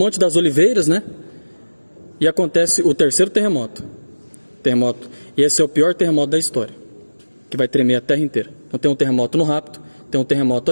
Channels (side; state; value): both; inverted; correlation -1.00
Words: das Oliveiras, né? E acontece o 3º terremoto. E esse é o pior terremoto da história, que vai tremer a terra inteira. Então tem um terremoto no rapto, tem um terremoto